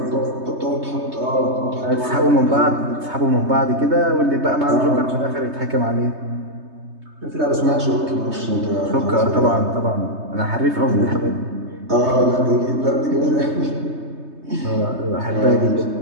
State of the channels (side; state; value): left; late; 3.2 ms